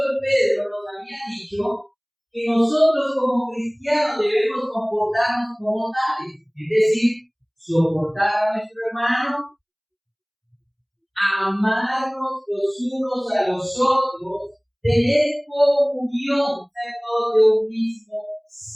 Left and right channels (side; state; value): both; identical; correlation 1.00